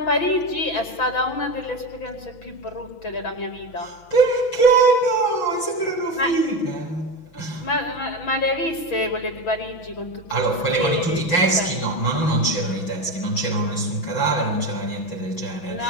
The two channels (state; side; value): late; right; 6.1 ms